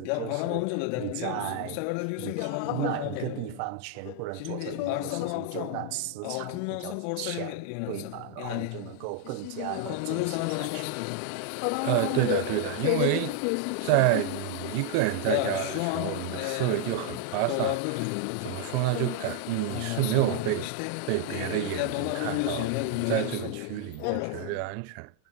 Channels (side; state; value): both; different; correlation 0.00